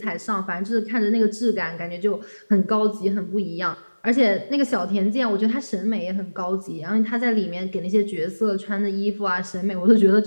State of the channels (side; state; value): both; inverted; correlation -1.00